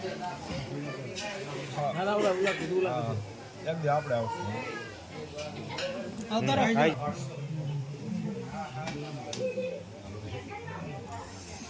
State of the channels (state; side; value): identical; both; correlation 1.00